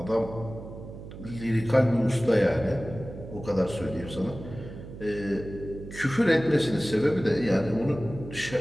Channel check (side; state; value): right; noise; hum, 13 dB below the sound